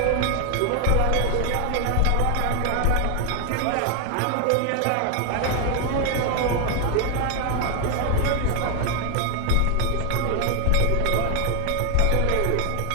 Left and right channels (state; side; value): different; both; correlation 0.00